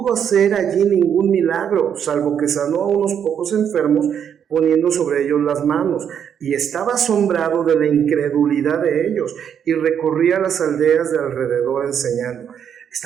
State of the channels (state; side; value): quieter; left; 8.4 dB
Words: hacer allí ningún milagro, salvo que sanó a unos pocos enfermos, poniendo sobre ellos las manos, y estaba asombrado de la incredulidad de ellos, y recorría las aldeas de alrededor enseñando.